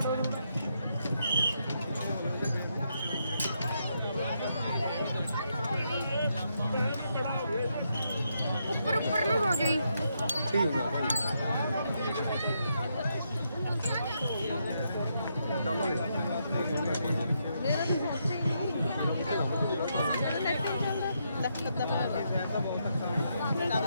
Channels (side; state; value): both; inverted; correlation -0.79